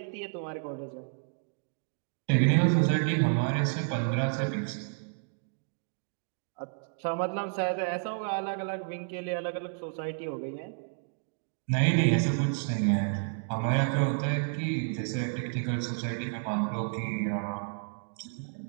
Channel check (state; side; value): silent; left; digital silence